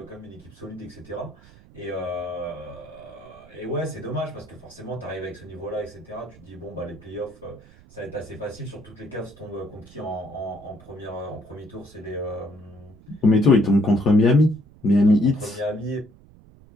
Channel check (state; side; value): noise; right; rumble, 23 dB below the sound